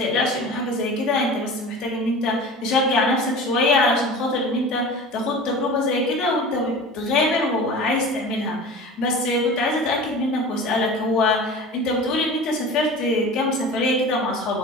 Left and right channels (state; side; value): normal; both; correlation 0.36